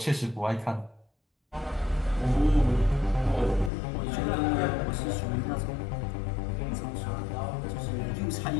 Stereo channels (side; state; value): right; drops out; at 3.7 s